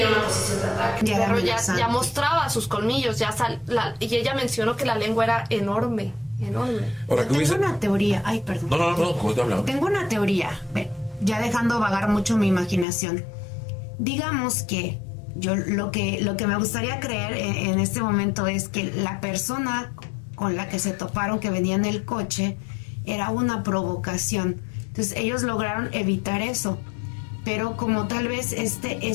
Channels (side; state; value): right; drops out; at 12.9 s